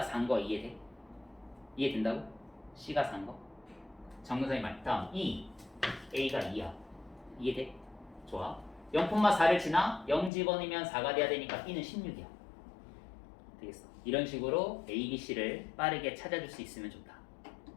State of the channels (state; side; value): drops out; right; at 10.3 s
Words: 4인 거 이해돼? 이해된다고? c가 4인 거? 점근선이 다음 2. a가 2야. 이해돼? 좋아. 0,4를 지나 0 집어넣으면 4가 돼야 되니까 b는 16이야. 되겠어. 이런 식으로 a, b, c를 빠르게 찾아줄 수 있으면 좋다.